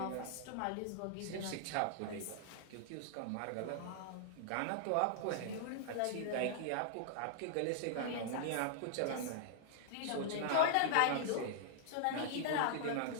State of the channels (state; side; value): different; both; correlation -0.01